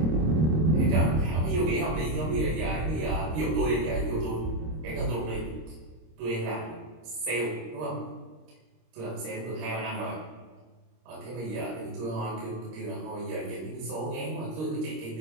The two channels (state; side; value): late; left; 26 ms